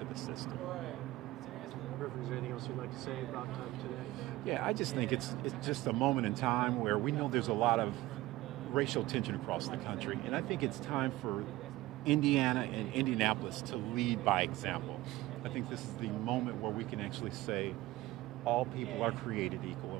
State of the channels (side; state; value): left; quieter; 18.0 dB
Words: the system. Is there anything else you'd like to say about today? Yeah, I just think it's just a moment in time where we know there's a lot of racial tension across the country, and I think it's time for Indiana and Indianapolis to lead by example. I think this is the moment where we can actually say all people are created equal,